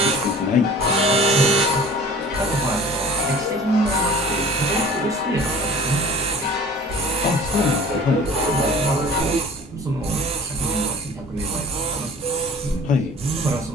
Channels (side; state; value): both; normal; correlation 0.45